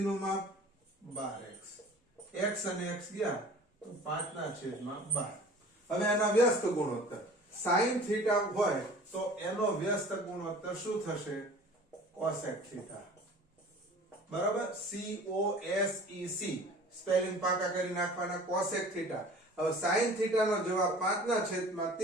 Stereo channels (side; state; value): both; normal; correlation 0.45